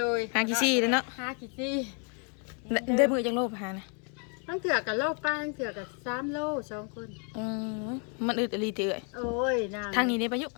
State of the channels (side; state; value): right; quieter; 39.6 dB